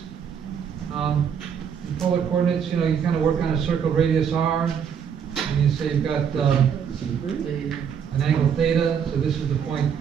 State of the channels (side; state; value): left; quieter; 7.6 dB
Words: In polar coordinates, you know, you kind of work on a circle radius r, and you say you've got, an angle theta, so this is the point,